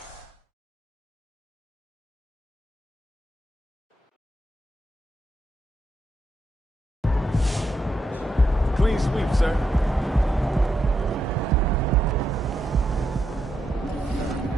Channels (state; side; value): normal; both; correlation 0.82